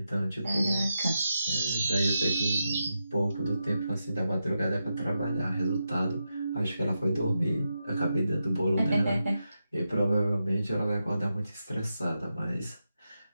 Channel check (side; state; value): both; inverted; correlation -0.88